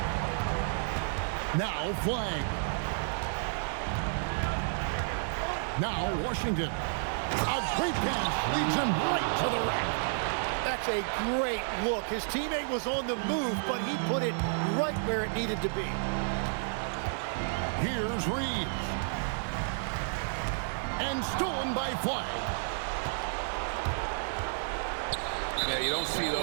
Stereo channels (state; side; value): silent; left; digital silence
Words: Now Flag. Now Washington. A great pass leads him right to the rack. That's a great look. His teammate was on the move, but he put it right where it needed to be. Here's Reeves. And stolen by Flag. Yeah, you don't see